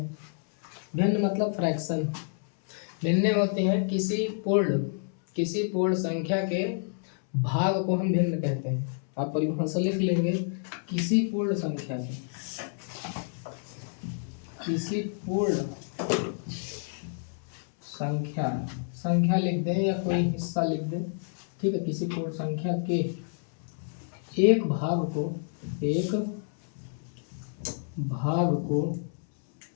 भिन्न मतलब फ्रैक्शन। भिन्न होते हैं किसी पूर्ण संख्या के भाग को हम भिन्न कहते हैं। आप परिभाषा लिख लेंगे, किसी पूर्ण संख्या के, किसी पूर्ण संख्या लिख दें या कोई हिस्सा लिख दें, ठीक है। किसी पूर्ण संख्या के एक भाग को भिन्न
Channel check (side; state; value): right; silent; 59 dB below the other